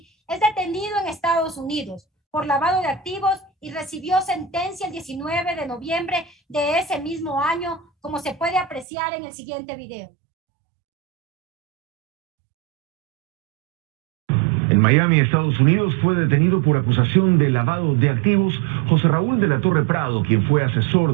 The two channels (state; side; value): drops out; left; at 8.8 s